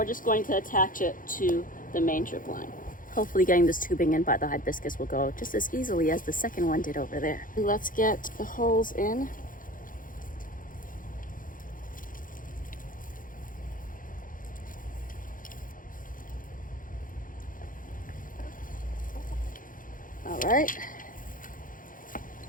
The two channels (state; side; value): late; right; 0.40 ms